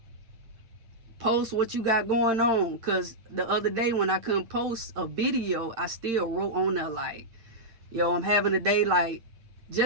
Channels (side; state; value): left; late; 8.9 ms